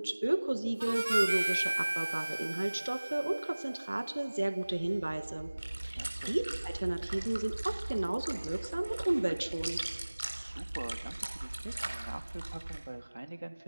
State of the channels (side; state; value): both; inverted; correlation -1.00